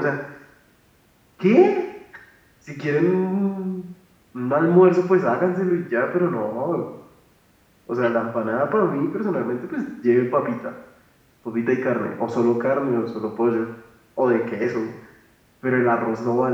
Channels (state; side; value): identical; both; correlation 1.00